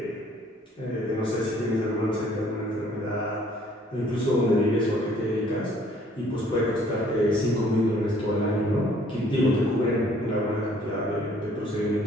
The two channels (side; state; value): both; normal; correlation 0.59